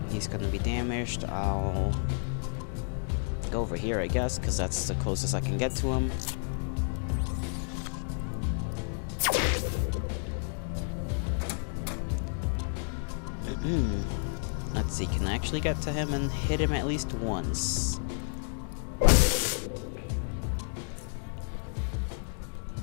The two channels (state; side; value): silent; right; 57 dB below the other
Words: He's gonna be damaged. I'll go over here, I guess, because that's the closest I can get to him. Let's see, can I actually get to him and hit him at least once?